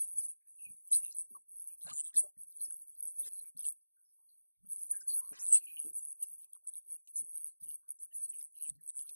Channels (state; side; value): inverted; both; correlation -1.00